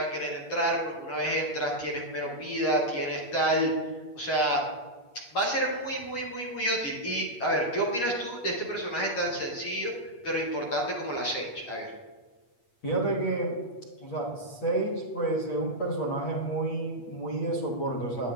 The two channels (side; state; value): right; late; 8.4 ms